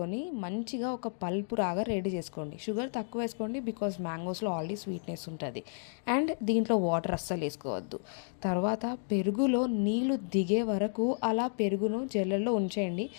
మంచిగా ఒక పల్పు రాగా రెడీ చేసుకోండి. షుగర్ తక్కువ వేసుకోండి బికాజ్ మ్యాంగోస్లో ఆల్రెడీ స్వీట్నెస్ ఉంటుంది. అండ్ దీంట్లో వాటర్ అస్సలు వేసుకోవద్దు. తర్వాత పెరుగులో నీళ్ళు దిగే వరకు అలా పెరుగును జల్లెల్లో ఉంచేయండి.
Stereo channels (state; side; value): silent; right; digital silence